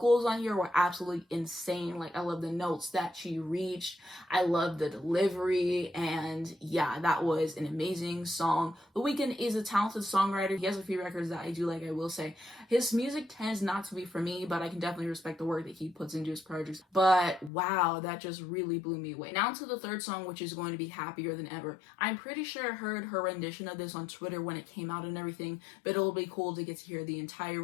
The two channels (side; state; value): right; drops out; at 17.5 s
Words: on here were absolutely insane. Like, I love the notes that she reached. I love the delivery, and yeah, that was an amazing song. The Weeknd is a talented talented songwriter. He has a few records that I do like, I will say. His music tends not to be for me, but I can definitely respect the work that he puts into his projects. But wow, that just really blew me away. Now to the third song, which is going to be Happier Than Ever. I'm pretty sure I heard her rendition of this on Twitter when it came out and everything, but it'll be cool to get to hear the entire